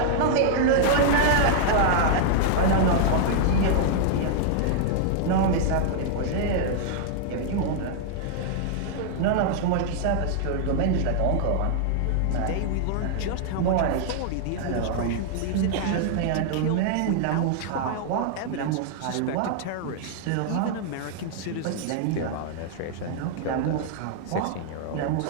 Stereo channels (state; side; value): different; both; correlation -0.01